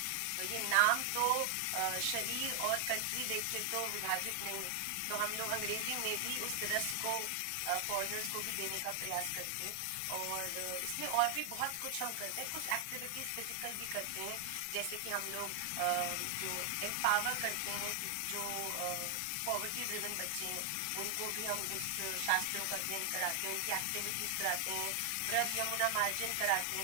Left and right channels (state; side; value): different; both; correlation 0.00